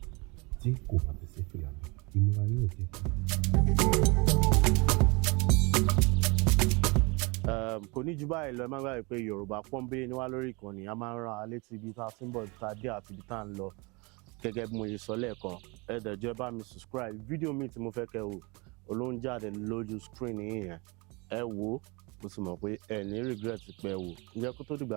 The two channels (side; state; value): left; quieter; 28.1 dB